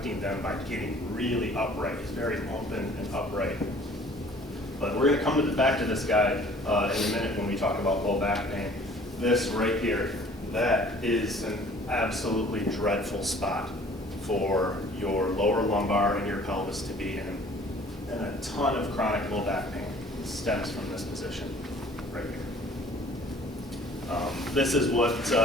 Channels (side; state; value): both; normal; correlation 0.52